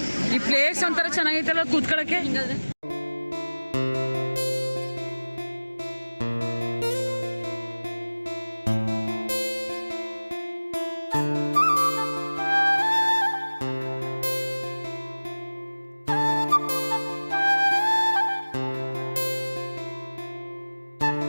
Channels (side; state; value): both; inverted; correlation -1.00